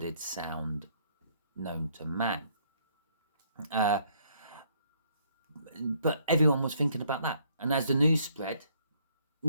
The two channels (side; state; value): both; inverted; correlation -0.66